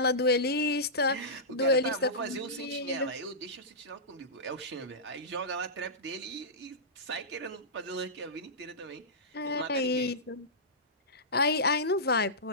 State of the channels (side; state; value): both; normal; correlation -0.16